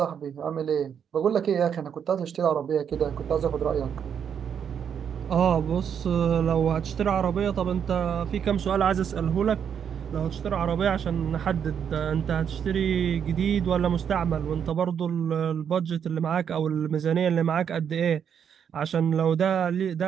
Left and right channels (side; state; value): left; quieter; 7.9 dB